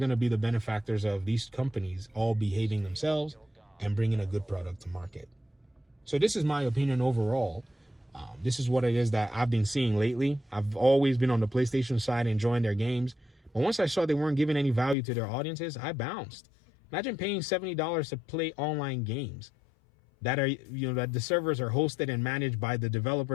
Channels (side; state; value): right; drops out; at 15.0 s